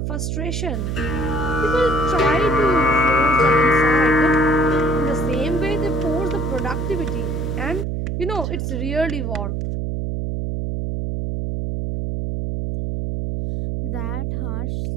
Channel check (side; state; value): right; noise; hum, 2 dB below the sound